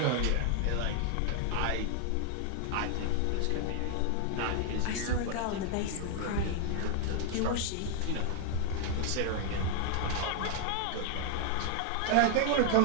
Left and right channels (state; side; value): different; both; correlation 0.00